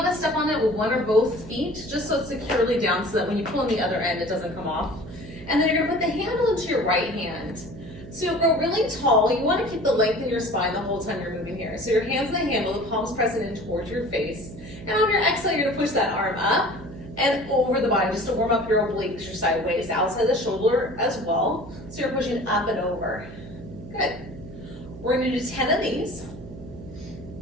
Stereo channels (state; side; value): noise; right; hum, 14 dB below the sound